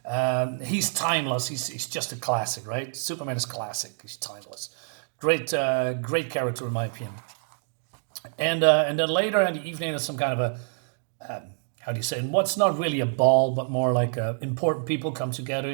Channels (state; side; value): silent; left; digital silence